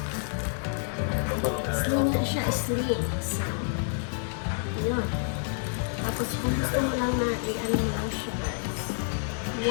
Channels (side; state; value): right; silent; 59 dB below the other